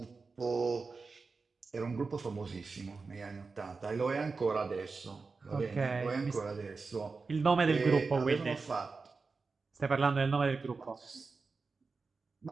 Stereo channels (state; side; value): quieter; left; 4.3 dB